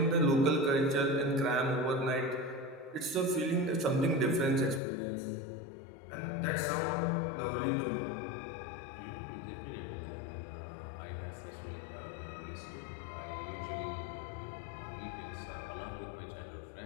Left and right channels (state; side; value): drops out; right; at 4.8 s